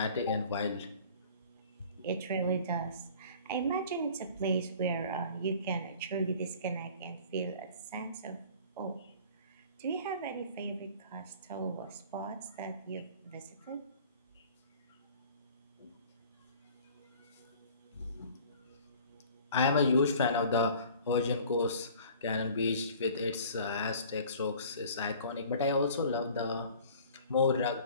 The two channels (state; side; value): inverted; both; correlation -0.47